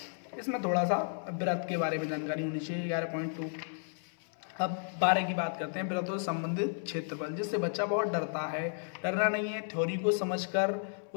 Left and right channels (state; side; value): silent; right; 56 dB below the other